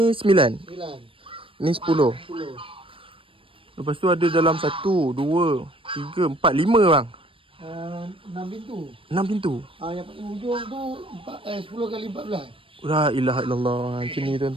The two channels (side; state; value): left; late; 0.26 ms